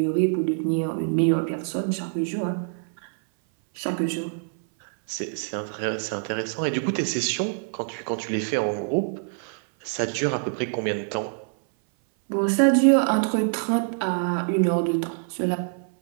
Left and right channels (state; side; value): silent; left; 58 dB below the other